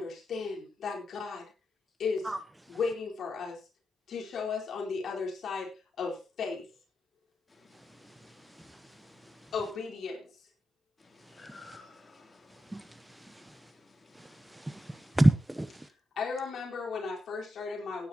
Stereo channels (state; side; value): normal; both; correlation 0.88